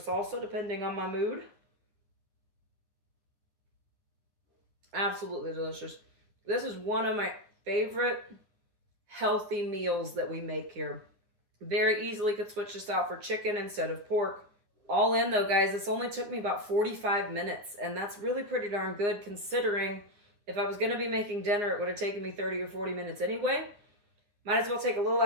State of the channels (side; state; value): left; late; 9.7 ms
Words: depending on my mood. Absolutely delicious. This is one of my favorite healthy meals that we make here. Very easily could switch this out for chicken instead of pork. All in though, guys, this only took me about 45 minutes, and that's really pretty darn good considering if I was going to be making dinner, it would have taken me 30 or 40 minutes anyway. Might as well take a little